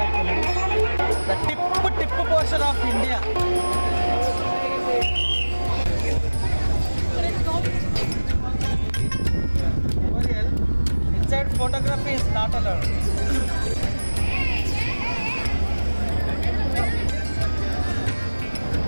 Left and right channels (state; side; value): inverted; both; correlation -1.00